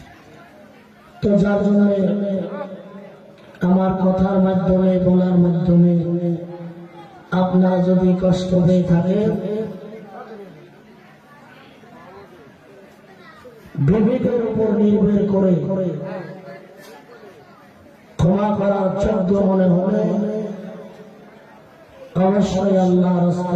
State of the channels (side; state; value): both; identical; correlation 1.00